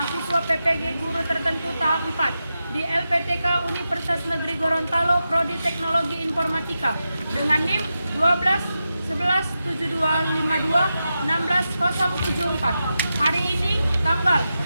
PPG Guru Tertentu tahap 4 di LPTK Universitas Negeri Gorontalo, Prodi Teknologi Informatika dengan NIM 12 11 72 52 16 074. Hari ini tanggal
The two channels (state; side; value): inverted; both; correlation -0.90